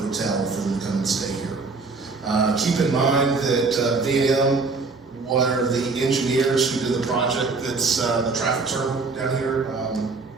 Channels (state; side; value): quieter; left; 4.0 dB